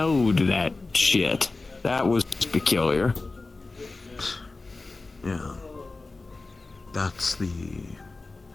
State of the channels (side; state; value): right; quieter; 3.5 dB